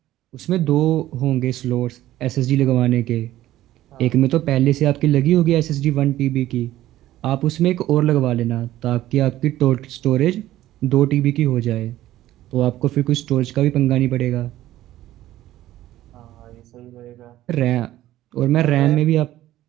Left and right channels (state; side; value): quieter; left; 14.4 dB